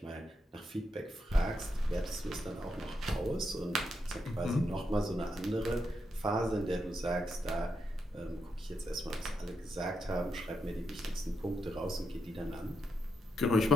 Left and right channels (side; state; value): both; normal; correlation 0.83